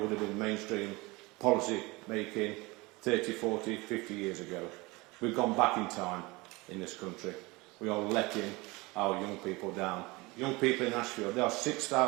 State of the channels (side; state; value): left; quieter; 23.7 dB